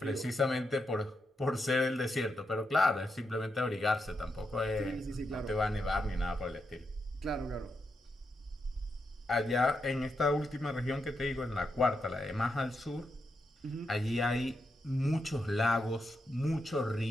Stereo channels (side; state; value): both; normal; correlation 0.84